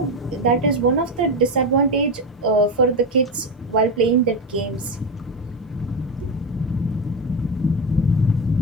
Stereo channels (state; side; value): normal; both; correlation 0.14